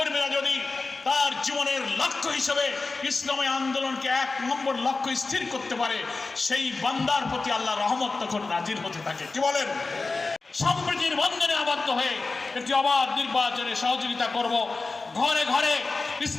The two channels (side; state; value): right; quieter; 3.7 dB